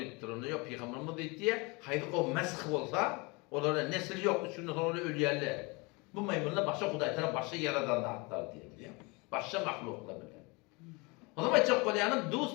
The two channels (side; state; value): right; quieter; 27.4 dB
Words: Onu yok peygamberimiz diýdi. Haydi o mesh bolsa, olara nesil yok, üçünde sonra ölýärler. Bu maymunlar başa Hudaý tarap başa yaradan atlar diýip. Başa mahluklar bilen. O zaman çok kolyanın